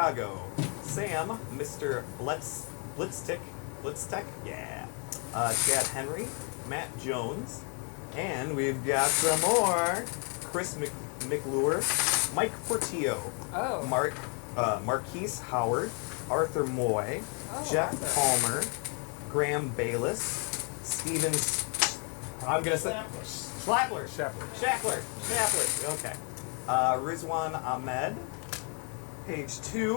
Sam, Mr. Blitztech, yeah, Chad Henry, Matt Jones, and we've got some more. Chris McLure, Mike Portillo, Oh. Marquise Howard, Arthur Moy, Oh, Jeff Arthur. Palmer, Graham Bayless, Steven. I'm gonna say Schlappler. Shackler. Okay. Rizwan Ahmed, page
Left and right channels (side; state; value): right; quieter; 38.0 dB